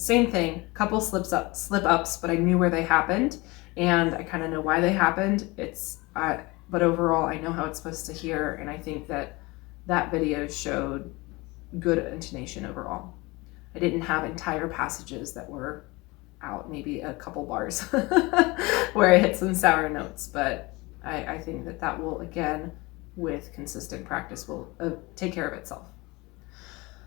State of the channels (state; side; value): quieter; right; 23.7 dB